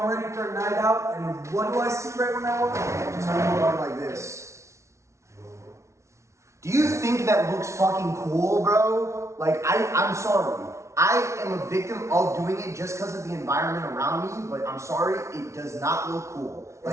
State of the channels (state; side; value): late; left; 0.14 ms